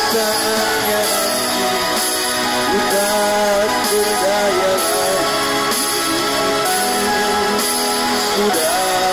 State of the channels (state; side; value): identical; both; correlation 1.00